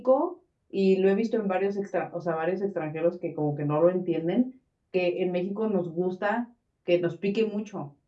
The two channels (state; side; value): identical; both; correlation 1.00